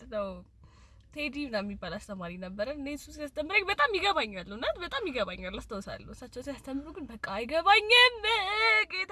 ቴዲ ምናምን የሚባል አስተማሪ ነበር። እኔ እሱ ሲያስተምረኝ በጣም ይገባኛል እና በጣም ይገባኛል አስታውሳለሁ። እሳቸው ሲያስተምሩ ግን በቃ አይገባኝም።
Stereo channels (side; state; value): both; identical; correlation 1.00